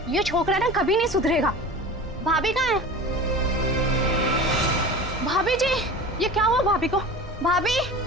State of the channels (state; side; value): normal; both; correlation 0.35